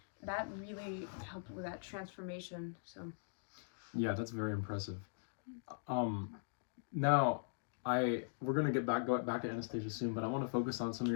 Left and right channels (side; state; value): right; silent; digital silence